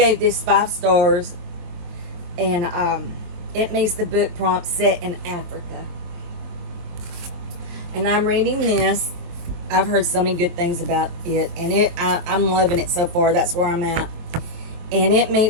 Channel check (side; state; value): left; late; 23 ms